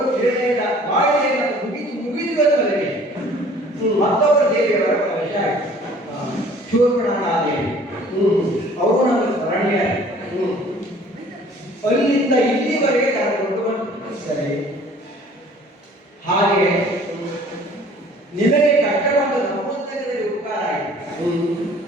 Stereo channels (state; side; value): normal; both; correlation 0.52